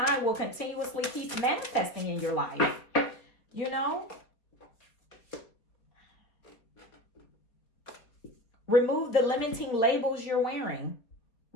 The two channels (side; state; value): right; late; 4.3 ms